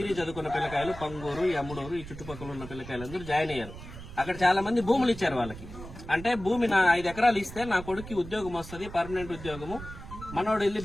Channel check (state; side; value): noise; right; rumble, 13 dB below the sound